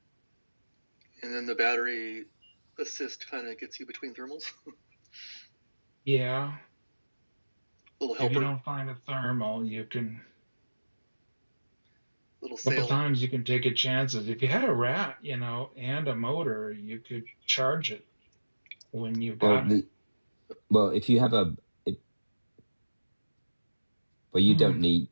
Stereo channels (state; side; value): inverted; both; correlation -1.00